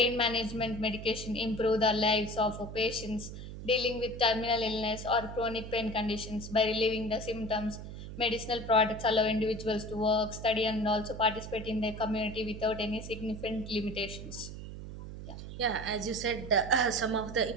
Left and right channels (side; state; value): right; noise; hum, 10 dB below the sound